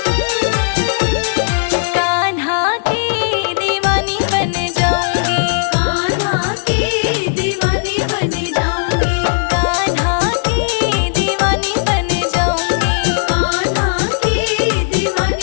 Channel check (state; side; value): silent; right; digital silence